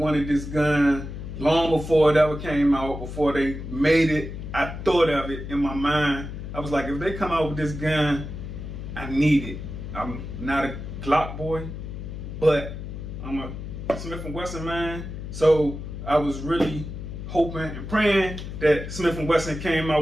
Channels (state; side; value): noise; left; hum, 8 dB below the sound